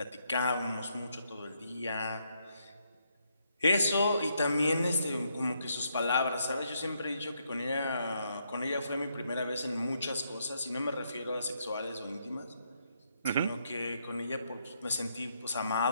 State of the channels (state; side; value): inverted; both; correlation -0.76